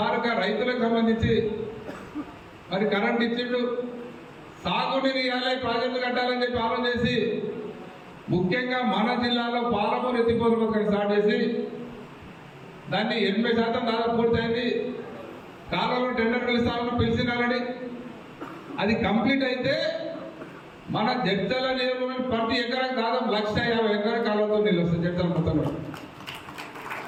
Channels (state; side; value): identical; both; correlation 1.00